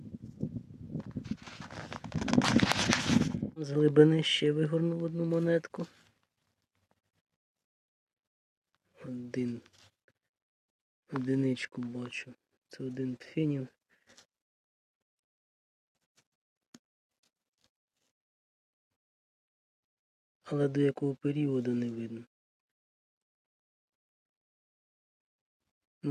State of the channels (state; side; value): identical; both; correlation 1.00